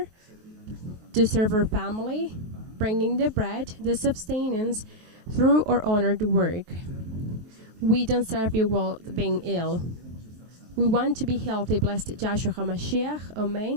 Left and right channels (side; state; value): left; late; 23 ms